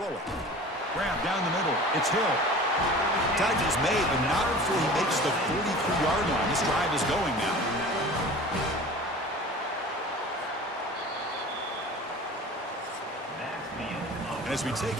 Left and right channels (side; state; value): both; normal; correlation 0.40